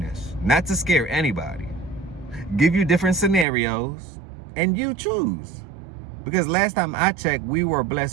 not to scare anybody. Give you different scenarios and you choose. Because last time I checked, we were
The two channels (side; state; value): left; drops out; at 3.5 s